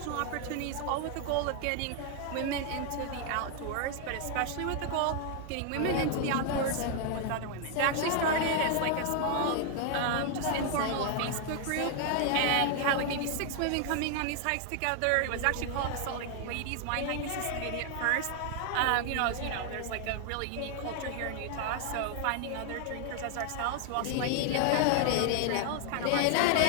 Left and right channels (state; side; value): different; both; correlation 0.00